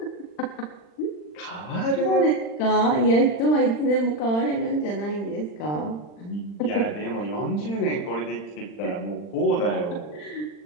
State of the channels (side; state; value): right; late; 40 ms